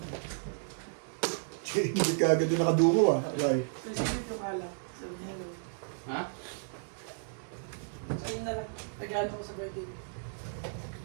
Hindi ka agad yung nakadungo ah. Okay. Kasi dito ka lang. Sabi niya, hello. Ha? Ayun na lang. Nag-ano ko sa birthday.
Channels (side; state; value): left; silent; digital silence